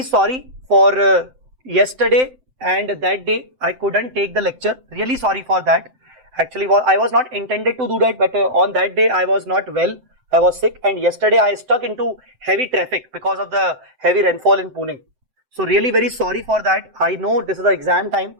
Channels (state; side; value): late; left; 7.8 ms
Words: sorry for yesterday and that day I couldn't take the lecture. Really sorry for that. Actually, I was not intended to do that, but on that day I was not well. I was sick, and yesterday I stuck into heavy traffic because of the heavy rainfall in Pune. So really very sorry for that. I know this is the exam time